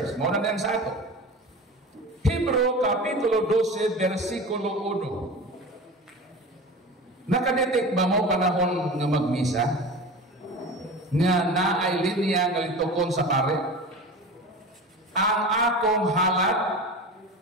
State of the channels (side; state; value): both; normal; correlation 0.32